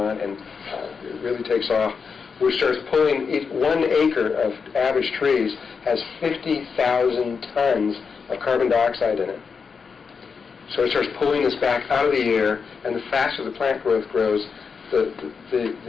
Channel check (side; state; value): right; quieter; 5.6 dB